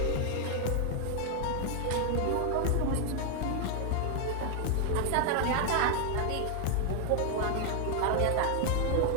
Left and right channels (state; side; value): different; both; correlation 0.00